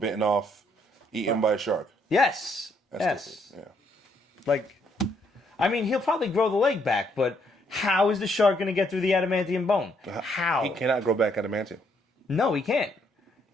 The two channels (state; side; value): normal; both; correlation 0.71